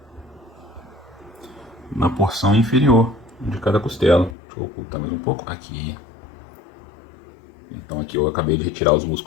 na porção inferior de cada costela. Deixa eu ocultar mais um pouco. Aqui. Então aqui eu acabei de retirar os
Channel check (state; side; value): drops out; right; at 4.4 s